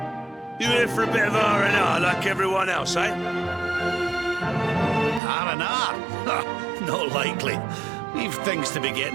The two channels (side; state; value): left; drops out; at 5.2 s